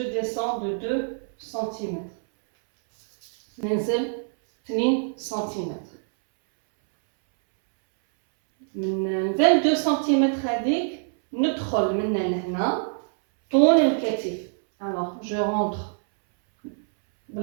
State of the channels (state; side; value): silent; left; 62 dB below the other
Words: ديسون دو 2 سنتيمتر ننزل 2 سنتيمتر. من 22 سنتيمتر هذيك ندخل من لهنا طول الكتف. alors je rentre